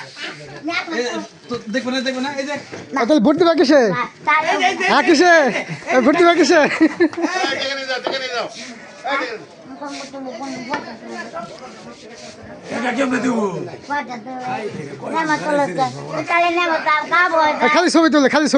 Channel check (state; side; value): identical; both; correlation 1.00